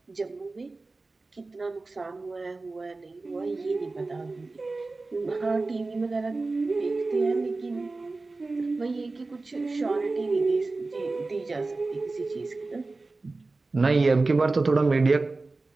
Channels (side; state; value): left; quieter; 3.5 dB